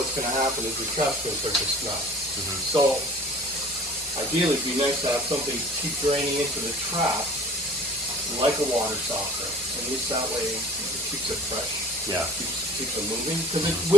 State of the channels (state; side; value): normal; both; correlation 0.47